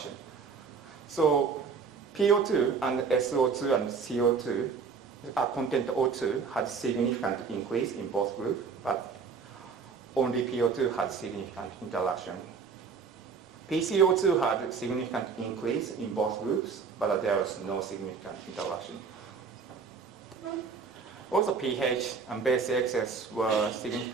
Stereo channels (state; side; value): quieter; left; 5.5 dB